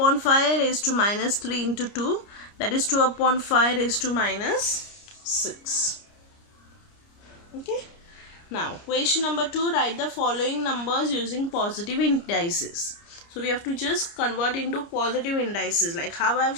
5 raised to minus 3 into 2, that is 2 upon 5 raised to minus 6. Okay. Now question number 2, write the following numbers using positive indices. So we have to just convert into positive indices like how I have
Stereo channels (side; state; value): right; late; 29 ms